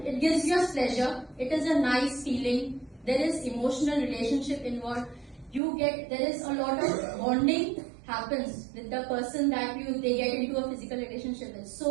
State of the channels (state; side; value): drops out; left; at 5.6 s